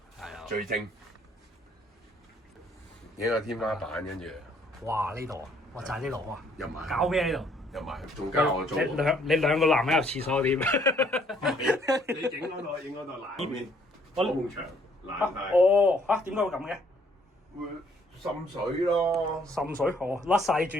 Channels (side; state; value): both; normal; correlation 0.64